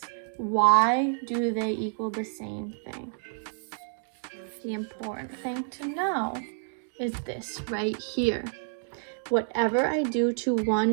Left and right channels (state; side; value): silent; left; digital silence